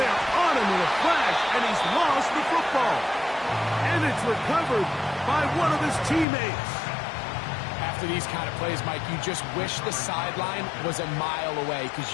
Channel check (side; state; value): right; drops out; at 6.2 s